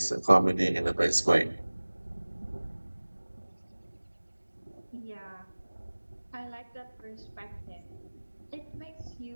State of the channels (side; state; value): both; inverted; correlation -1.00